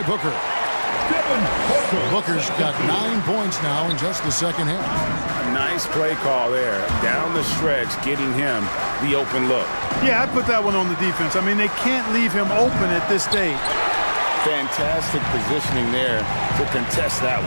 Booker. Booker's got 9 points now in just the second half. Nice play call there. Down the stretch, getting him the open look. Yeah, I put that one on the defense. I mean, they can't leave him open at this stage. Fantastic positioning there to contest that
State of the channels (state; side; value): inverted; both; correlation -1.00